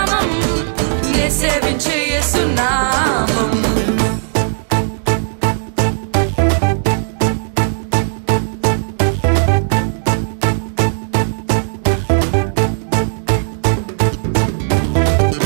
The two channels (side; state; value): left; silent; digital silence